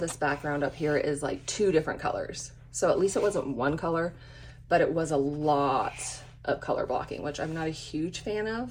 background up here is like 2 different colors. So at least it wasn't one color, but it was a lot of color blocking, which I'm not a huge fan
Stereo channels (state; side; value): identical; both; correlation 1.00